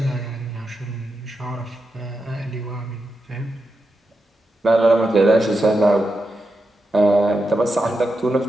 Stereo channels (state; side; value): normal; both; correlation 0.87